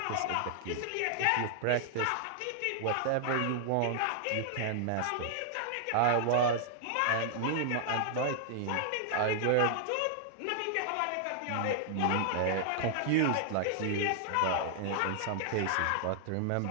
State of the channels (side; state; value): both; different; correlation 0.00